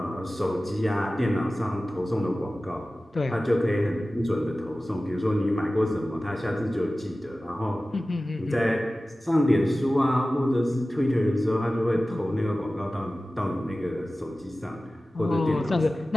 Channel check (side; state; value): both; normal; correlation 0.96